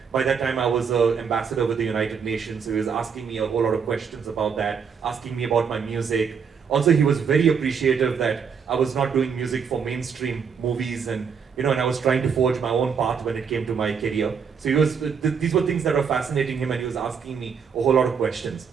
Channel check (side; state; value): left; quieter; 6.5 dB